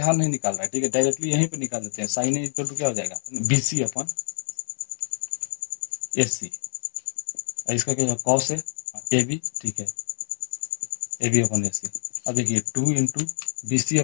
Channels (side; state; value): right; silent; 61 dB below the other